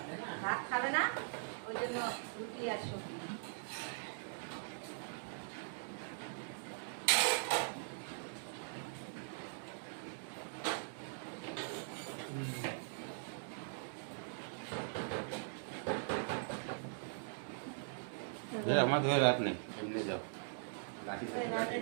ভাত খাবে না, ওই জন্য রুটি আর সবজি। আমার ধরে রাত নেই, এমনি যাও লাঠি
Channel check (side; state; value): left; silent; digital silence